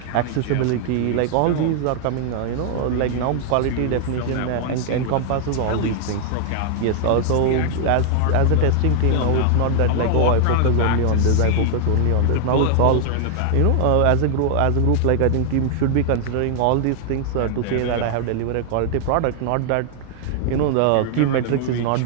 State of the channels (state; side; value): different; both; correlation 0.00